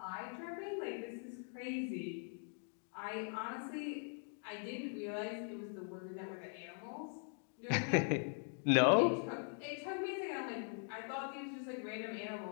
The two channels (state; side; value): silent; right; 50 dB below the other